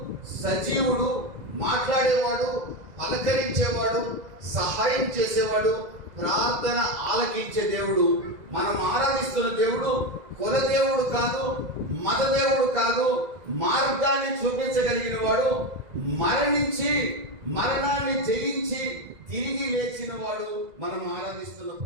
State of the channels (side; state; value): left; late; 2.0 ms